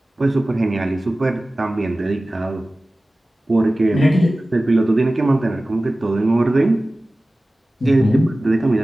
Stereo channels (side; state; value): both; normal; correlation 0.97